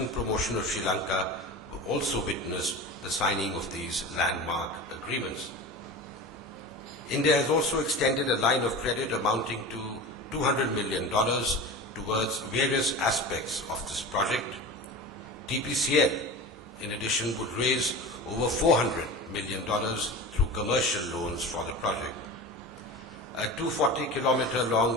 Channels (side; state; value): both; normal; correlation 0.31